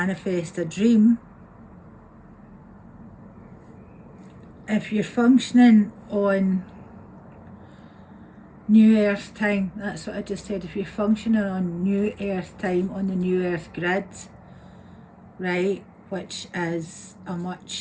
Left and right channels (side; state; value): both; identical; correlation 1.00